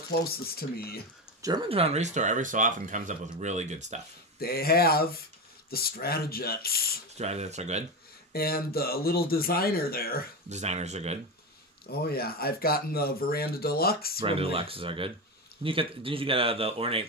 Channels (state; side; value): normal; both; correlation 0.18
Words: to me. Germantown Restore every so often comes up with really good stuff. They have the Stratojets. Stratojets are good. And the little designer there. Designers are good. Oh yeah, I've gotten the Veranda Deluxe. Veranda Deluxes are good. Didn't you get the ornate